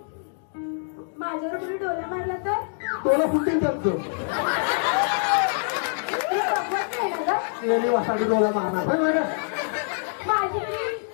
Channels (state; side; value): silent; right; 62 dB below the other